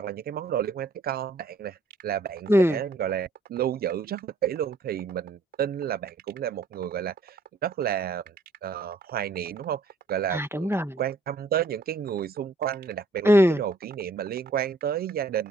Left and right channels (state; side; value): quieter; left; 3.3 dB